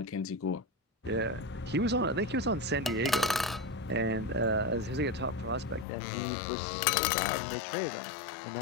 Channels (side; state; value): right; drops out; at 5.9 s